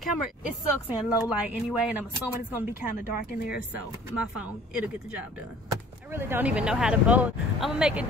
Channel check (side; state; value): both; normal; correlation 0.51